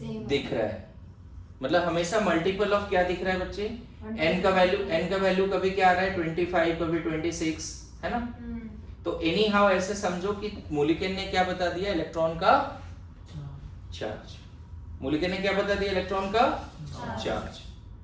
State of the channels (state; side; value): identical; both; correlation 1.00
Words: दिख रहा है मतलब हमेशा मल्टीपल ऑफ क्या दिख रहा है बच्चे n का वैल्यू कभी क्या आ रहा है 25 कभी 26 है ना तो एनी हाउ ऐसे समझो कि मूलिकेन ने क्या बता दिया इलेक्ट्रॉन का चार्ज मूलिकेन ने क्या बता दिया इलेक्ट्रॉन का चार्ज